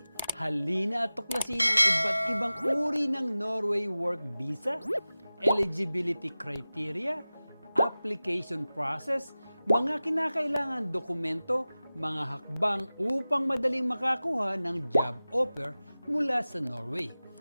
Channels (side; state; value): both; inverted; correlation -0.97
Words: Halina at tuklasin ang iba't ibang uri ng Norway Work Visa, eligibility criteria, application process, mga kinakailangan dokumento, mga hakbang upang madaling makakuha ng job offer mula sa Norway,